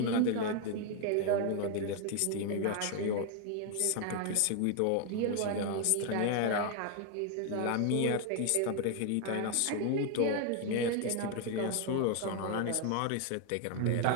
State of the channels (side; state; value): both; different; correlation 0.00